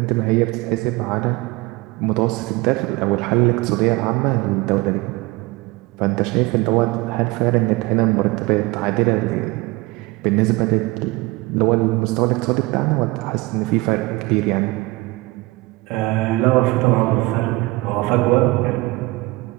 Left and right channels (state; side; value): quieter; left; 22.2 dB